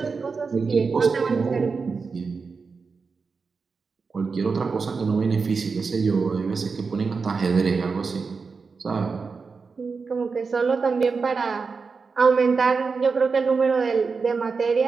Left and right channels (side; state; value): left; quieter; 4.8 dB